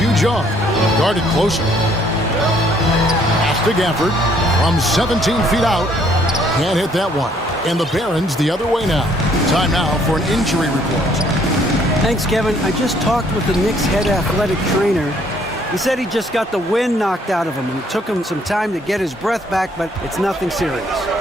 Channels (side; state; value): both; normal; correlation 0.64